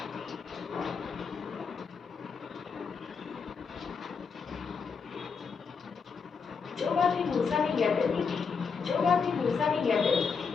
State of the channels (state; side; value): quieter; right; 5.6 dB